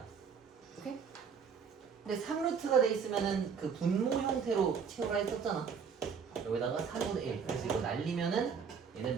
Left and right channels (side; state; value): left; quieter; 6.4 dB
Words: 오케이? 근데 3루트가 돼 있으면은 그 분모 형태로 채우라 했었잖아. 여기다가 4분의 1. 그래서 이거 날리면은 얘는